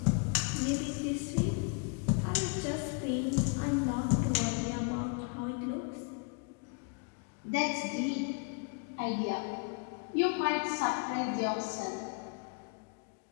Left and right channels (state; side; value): quieter; right; 36.3 dB